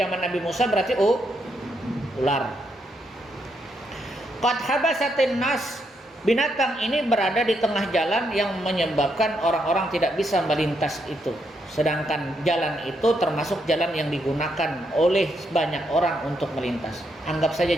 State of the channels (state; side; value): normal; both; correlation 0.78